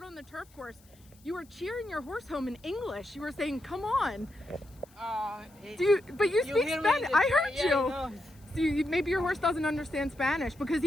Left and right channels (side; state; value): left; noise; hiss, 29 dB below the sound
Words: on the turf course. You were cheering your horse home in English. You were saying, come on. But you speak Spanish. I heard you. No. So maybe your horse doesn't understand Spanish because